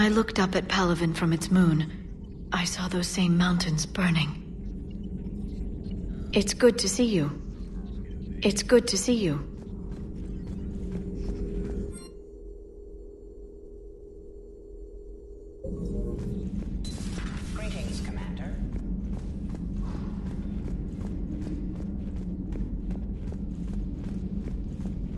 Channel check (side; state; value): both; identical; correlation 1.00